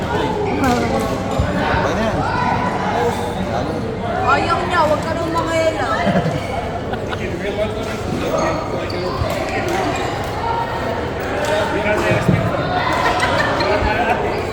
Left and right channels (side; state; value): both; identical; correlation 1.00